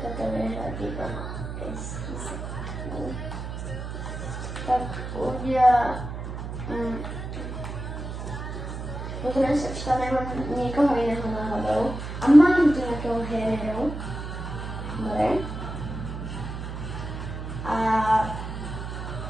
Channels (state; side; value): noise; right; hum, 7 dB below the sound